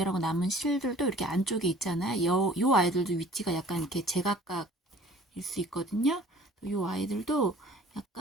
남은 실들도 이렇게 안쪽에 있잖아요. 요 아이들도 위치가 약간 이렇게 제각각일 수 있거든요. 요 아이들도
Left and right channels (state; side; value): normal; both; correlation 0.50